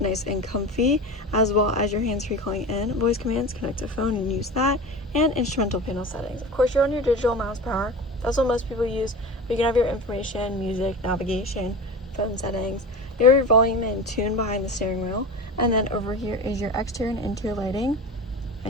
and comfy, as well as your hands-free calling in, voice commands, connect to phone and use that, and instrumental panel settings. Of course, you're on your digital miles per hour. That's what most people use. But you can have your information, music, navigation, phone settings. You have your volume and tune behind the steering wheel. And then over here is your exterior and interior lighting,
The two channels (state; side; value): normal; both; correlation 0.30